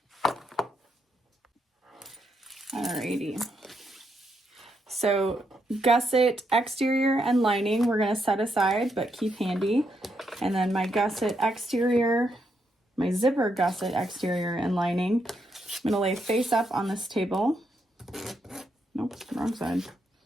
Alrighty. So gusset exterior and lining we're going to set aside but keep handy. And then my gusset exterior, my zipper gusset exterior and lining, I'm going to lay face up on this table. Nope, wrong side.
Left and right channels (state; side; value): normal; both; correlation 0.79